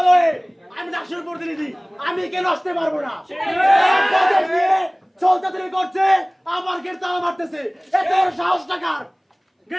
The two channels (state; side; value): identical; both; correlation 1.00